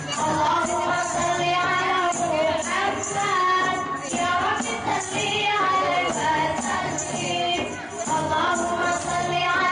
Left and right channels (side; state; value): both; identical; correlation 1.00